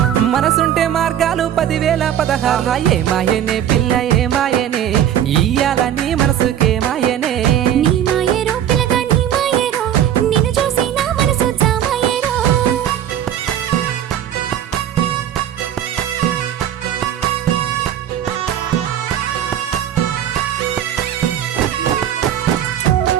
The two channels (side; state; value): left; quieter; 10.4 dB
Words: మనసుంటే మార్గాలు 10,016 ఏ మాయనే పిల్ల ఏ మాయనే ఇయ్యాల నీ మనసుకే మాయనే నీ మాయేరో పిల్లగా నీ మాయేరో నిన్ను చూసి నా మనసు జామాయేరో